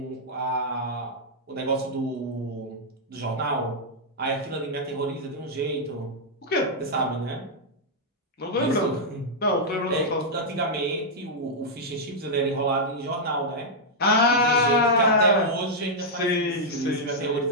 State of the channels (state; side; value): normal; both; correlation -0.05